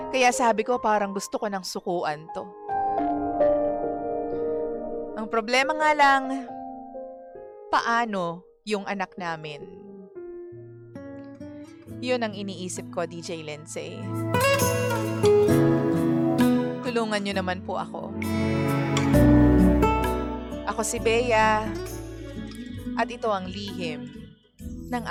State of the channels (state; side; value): identical; both; correlation 1.00